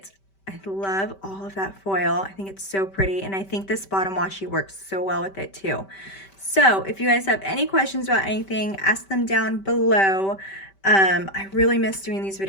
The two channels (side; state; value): right; late; 5.1 ms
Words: I love all of that foil. I think it's so pretty, and I think this bottom washi works so well with it too. So if you guys have any questions about anything, ask them down below. I really miss doing these